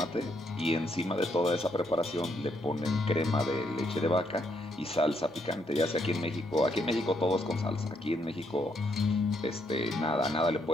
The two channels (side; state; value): both; normal; correlation 0.75